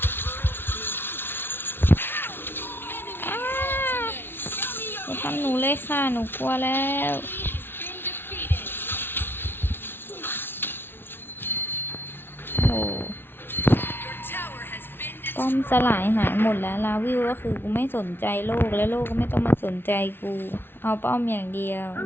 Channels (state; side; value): late; right; 0.11 ms